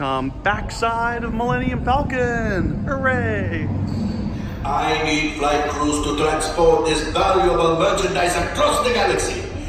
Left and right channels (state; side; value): identical; both; correlation 1.00